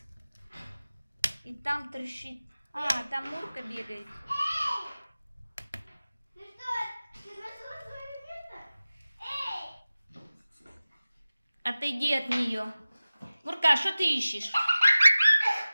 И там трещит. А, там Мурка бегает. Ну что, ты нашла свое место? Эй! Отойди от нее. Мурка, что ты ищешь?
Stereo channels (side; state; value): both; inverted; correlation -0.96